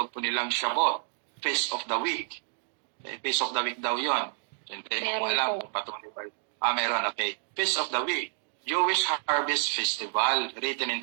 po nilang Shabbat, Feast of the Week. Feast of the Week daw yon. Hindi ko alam kung patuloy ba. Meron, okay. Feast of the Week, Jewish Harvest Festival, written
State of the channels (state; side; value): silent; left; digital silence